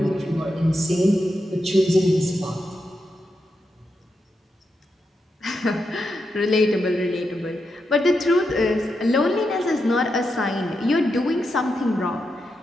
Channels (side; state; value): both; normal; correlation 0.85